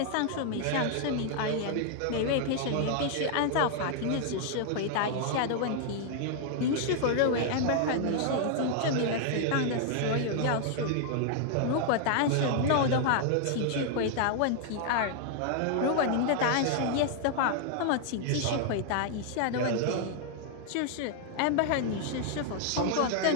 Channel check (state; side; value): different; both; correlation 0.00